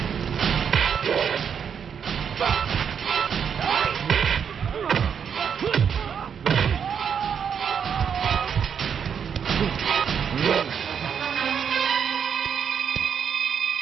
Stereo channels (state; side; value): quieter; left; 7.4 dB